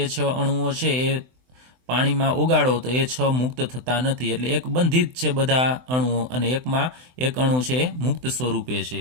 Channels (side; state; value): left; late; 24 ms